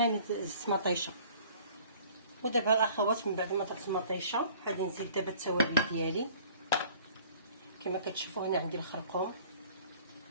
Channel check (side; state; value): both; inverted; correlation -0.52